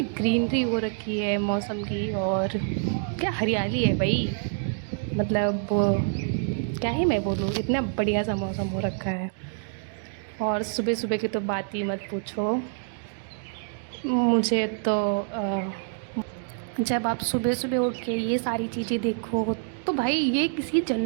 ग्रीनरी हो रखी है मौसम की, और क्या हरियाली है भाई। मतलब क्या ही मैं बोलूँ, इतना बढ़िया सा मौसम हो रखा है। और सुबह सुबह की तो बात ही मत पूछो। मुझे तो जब आप सुबह सुबह उठ के ये सारी चीज़ें देखो, तो भाई ये किसी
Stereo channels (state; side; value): silent; left; digital silence